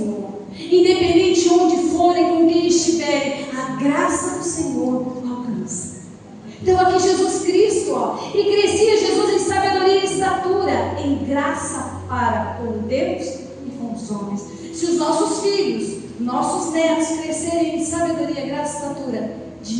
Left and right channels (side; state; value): both; identical; correlation 1.00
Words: Independente de onde forem, com quem estiverem, a graça do Senhor alcança. Então aqui Jesus Cristo, e crescia Jesus em sabedoria e estatura, em graça para com Deus e com os homens. Se os nossos filhos, nossos netos crescerem em sabedoria, graça e estatura,